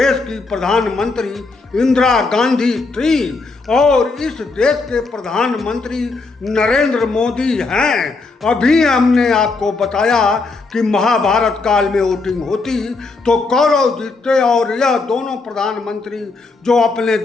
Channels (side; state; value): right; quieter; 3.8 dB